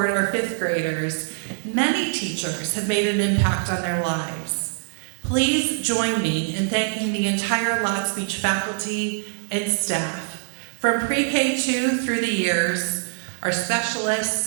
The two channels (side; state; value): left; silent; 57 dB below the other